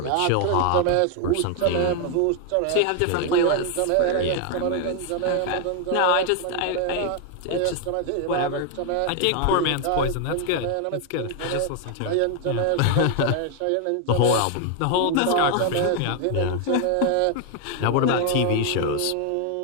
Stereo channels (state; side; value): different; both; correlation 0.00